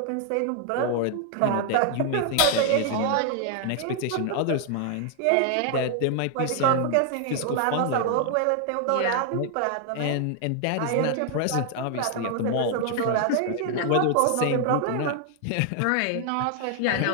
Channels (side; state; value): both; different; correlation 0.00